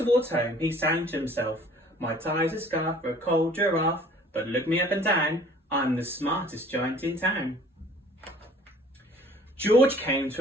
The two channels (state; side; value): normal; both; correlation 0.53